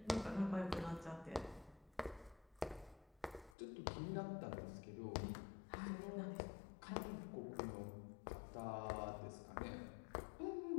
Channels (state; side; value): drops out; right; at 3.6 s